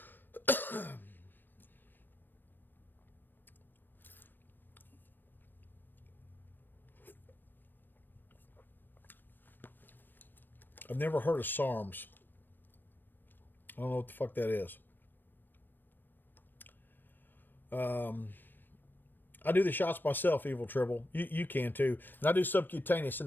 I've never heard of SARMs. I don't know what the fuck that is. I do the shots myself, Evil Tribble. You can too. And I do subcutaneous in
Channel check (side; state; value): right; late; 0.093 ms